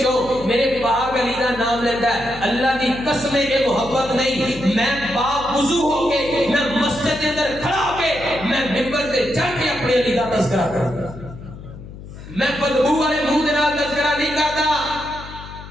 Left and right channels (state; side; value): noise; left; hum, 14 dB below the sound